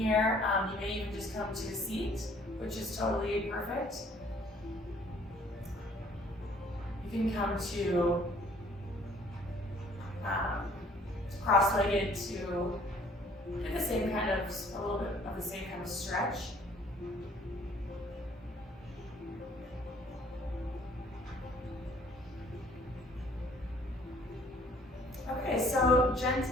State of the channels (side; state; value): both; normal; correlation 0.58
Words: You may even just come to a seat, which is totally perfect. You can come to cross-legged to do the same kind of, a little bit of the same kind of stretch. Okay, so